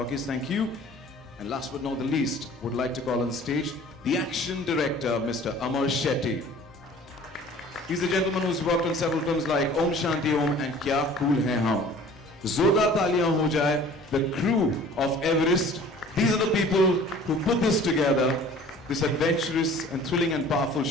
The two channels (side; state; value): both; normal; correlation 0.48